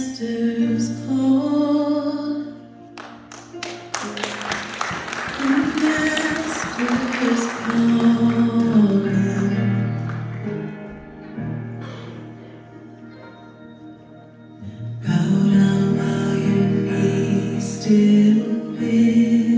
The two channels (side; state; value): both; identical; correlation 1.00